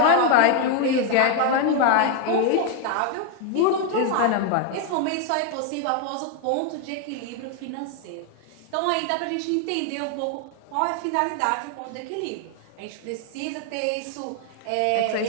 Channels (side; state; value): both; different; correlation 0.01